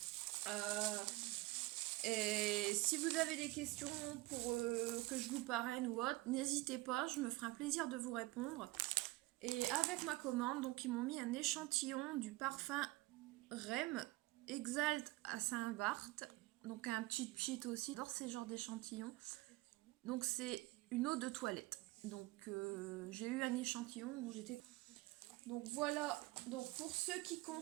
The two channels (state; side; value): quieter; left; 20.2 dB